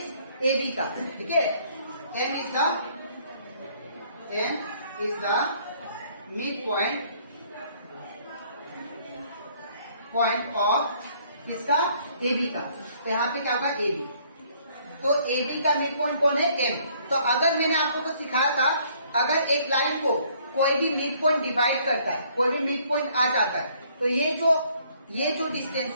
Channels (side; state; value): both; inverted; correlation -0.62